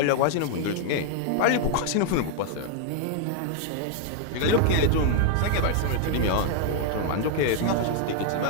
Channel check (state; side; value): different; both; correlation 0.00